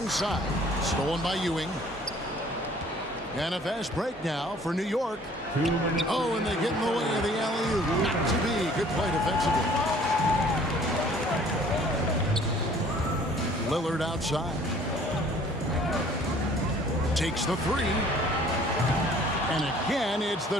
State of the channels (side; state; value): both; normal; correlation 0.54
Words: Stolen by Ewing. And a fast break now for New York. Oh, and they get in the way of the alley-oop. Not to be. Good play defensively. Lillard outside. Takes the 3. And again, it's